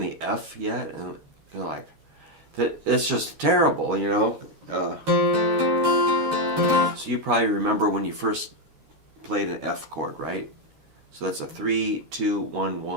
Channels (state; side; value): late; left; 12 ms